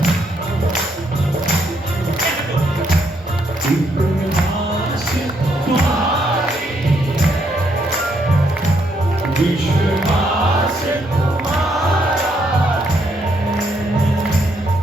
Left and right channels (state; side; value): normal; both; correlation 0.74